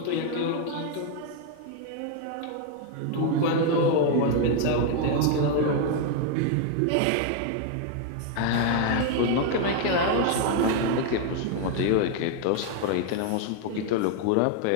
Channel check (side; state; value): both; different; correlation 0.00